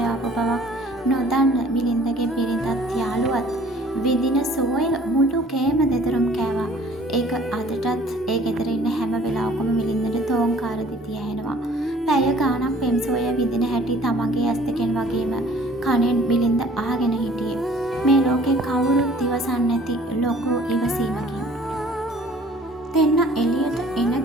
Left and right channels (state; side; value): normal; both; correlation 0.53